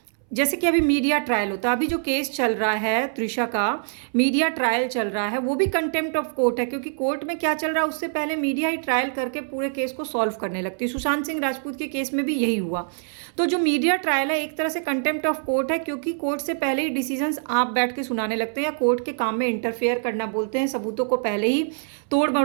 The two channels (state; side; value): silent; left; 62 dB below the other